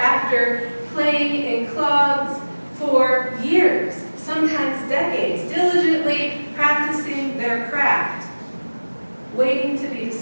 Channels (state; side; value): inverted; both; correlation -1.00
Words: playing in clubs for years, sometimes decades, diligently practicing their craft, waiting to be